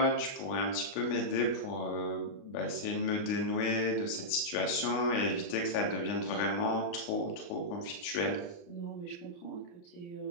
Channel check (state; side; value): late; right; 29 ms